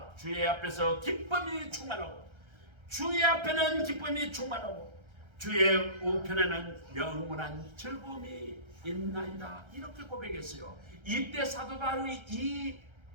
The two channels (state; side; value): late; left; 1.3 ms